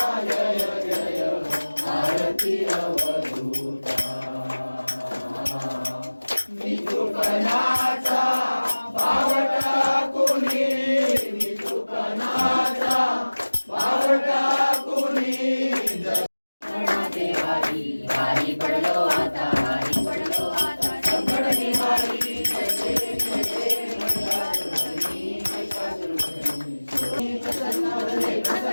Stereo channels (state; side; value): inverted; both; correlation -1.00